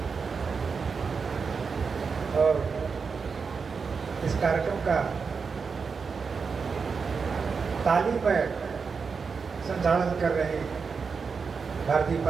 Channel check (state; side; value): quieter; left; 5.3 dB